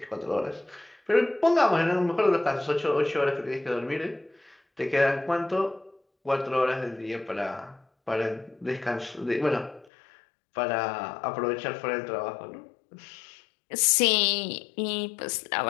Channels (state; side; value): drops out; right; at 9.9 s